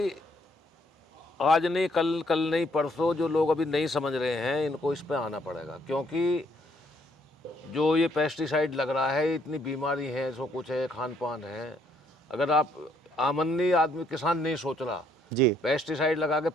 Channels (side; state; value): both; normal; correlation 0.68